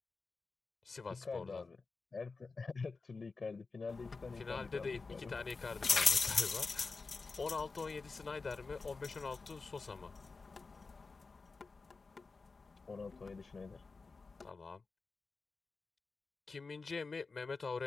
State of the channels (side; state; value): right; quieter; 4.2 dB